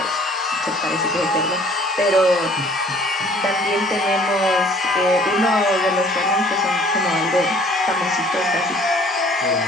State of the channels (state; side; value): normal; both; correlation 0.55